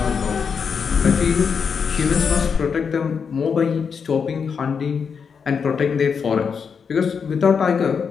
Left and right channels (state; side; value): quieter; right; 6.2 dB